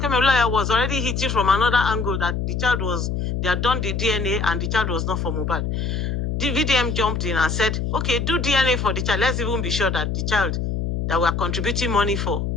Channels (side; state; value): left; noise; hum, 1 dB below the sound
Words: lawyer was already hitting from another angle that the child was, they had done the DNA and the child was not for Mohbad. The VDM jumped in and said, okay, do DNA for the child. Let's even be sure that the child that we're contributing money for